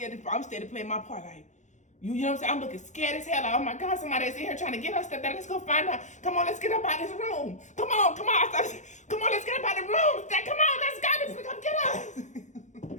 playing my part. Like, you know what I'm saying? I'm looking scared as hell. Like, oh my God, somebody's in here trying to get us. Let's go find out. Come on, let's get up out of this room. Come on. Come on, let's get up out of the room. Come on, let's go. Come get us.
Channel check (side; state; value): right; late; 0.35 ms